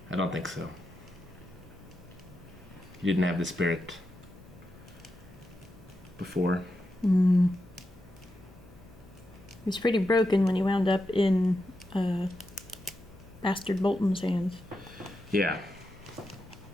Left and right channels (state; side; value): noise; left; hum, 21 dB below the sound